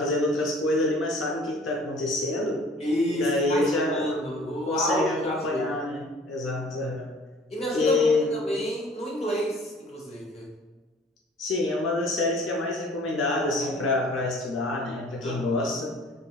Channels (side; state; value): both; normal; correlation 0.50